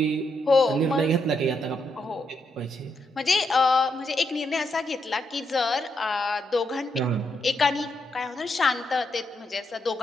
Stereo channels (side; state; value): both; normal; correlation 0.80